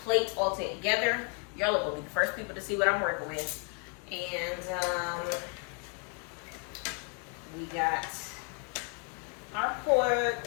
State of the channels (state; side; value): quieter; right; 35.9 dB